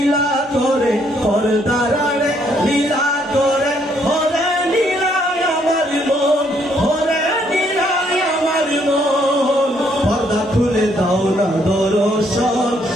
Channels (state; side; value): normal; both; correlation 0.69